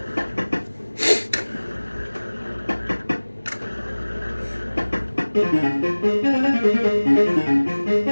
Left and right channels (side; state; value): both; inverted; correlation -1.00